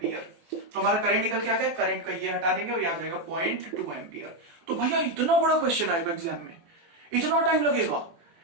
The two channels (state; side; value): late; left; 24 ms